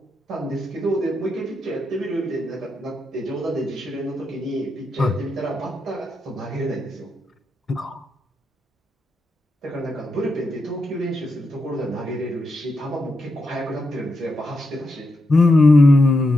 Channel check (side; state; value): both; normal; correlation 0.84